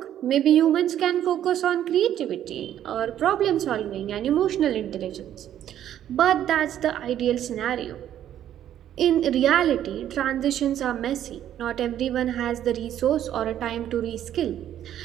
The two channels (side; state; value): left; quieter; 11.1 dB